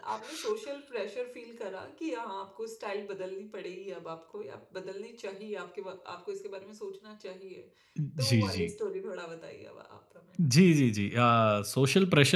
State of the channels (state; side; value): identical; both; correlation 1.00